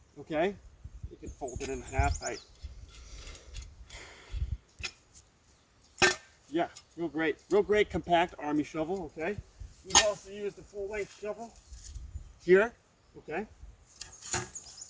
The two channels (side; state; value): both; identical; correlation 1.00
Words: Okay, you can fold it in half. Yeah, real great compact army shovel. Okay, we've also used a full length shovel here. Okay,